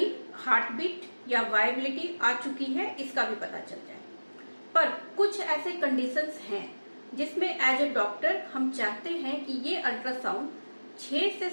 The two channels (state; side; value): inverted; both; correlation -1.00